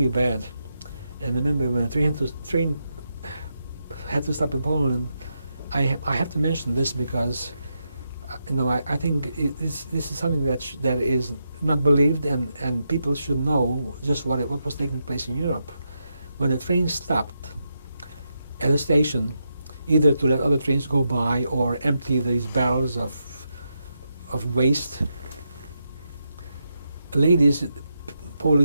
bad. And I remember when the train had to stop in Poland. I have to mention this because I think this is something that is not believed, and people should know just what was taking place in Europe. When the train stopped at a station, either to let other trains go by or empty these barrels of waste,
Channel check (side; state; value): both; inverted; correlation -0.85